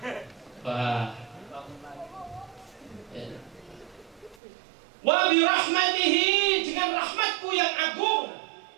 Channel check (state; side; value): drops out; left; at 4.4 s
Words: Wah. Wa bi rahmatihi, dengan rahmatku yang agung.